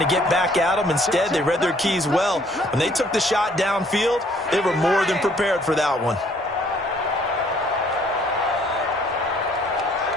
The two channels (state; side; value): normal; both; correlation 0.61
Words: get back at them. Instead, they read their keys well. When they took the shot downfield, they were more than prepared for that one.